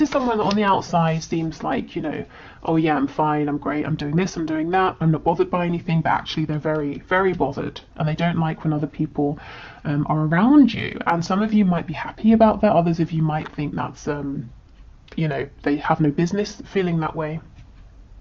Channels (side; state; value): both; identical; correlation 1.00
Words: is someone that on the outside seems like, you know, oh yeah, I'm fine, I'm great, I'm doing this, I'm doing that, I'm not bothered by anything, but actually they're very, very bothered, and they don't like when other people are around you. And some of you might be happy about that, others of you might think that's, you know, they have no business feeling that way.